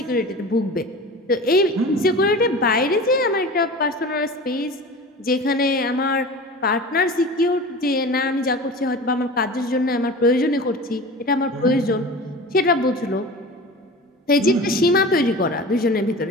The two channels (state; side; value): normal; both; correlation 0.35